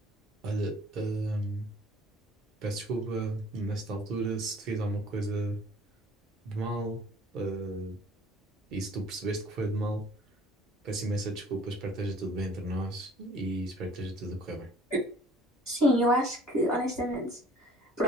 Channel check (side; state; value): both; normal; correlation 0.53